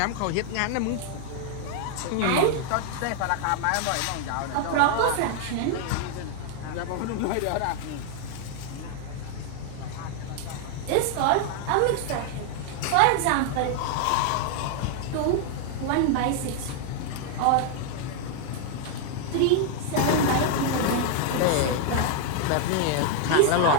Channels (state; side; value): different; both; correlation 0.00